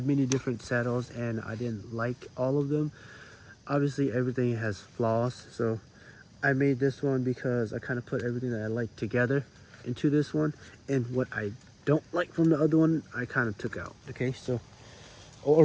many different saddles and I didn't like all of them. obviously everything has flaws, so I made this one because I kind of put everything that I like together into this one, and what I don't like from the other one I kind of took out. Okay, so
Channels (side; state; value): both; identical; correlation 1.00